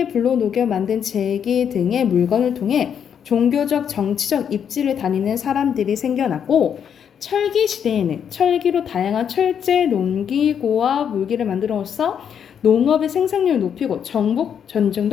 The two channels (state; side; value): quieter; right; 8.1 dB